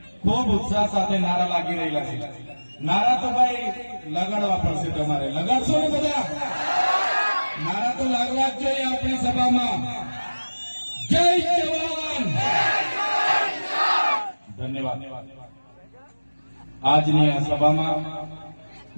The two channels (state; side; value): inverted; both; correlation -1.00